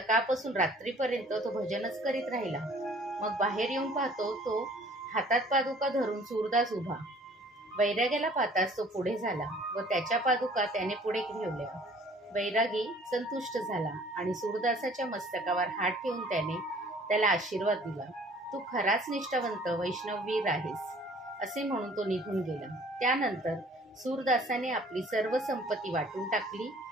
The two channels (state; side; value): normal; both; correlation 0.54